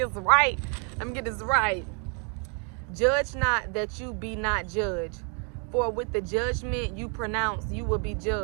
right. Judge not that you be not judged. For with the judgment you pronounce, you will be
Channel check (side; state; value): left; quieter; 37.9 dB